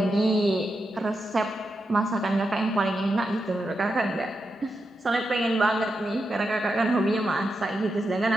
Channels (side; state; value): both; normal; correlation 0.87